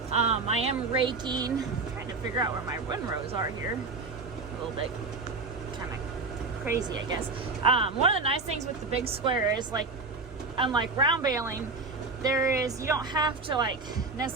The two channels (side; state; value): left; quieter; 3.8 dB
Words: I am raking, trying to figure out where my windrows are here. A little bit kind of crazy, I guess. One of the nice things with the big square is, like, unlike round baling, you don't have to like